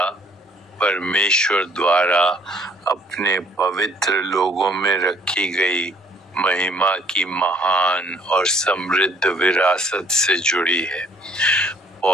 परमेश्वर द्वारा अपने पवित्र लोगों में रखी गई महिमा की महान और समृद्ध विरासत से जुड़ी है।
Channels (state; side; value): normal; both; correlation 0.59